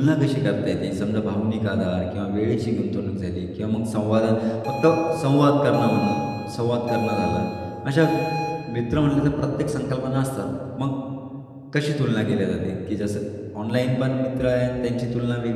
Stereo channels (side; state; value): both; identical; correlation 1.00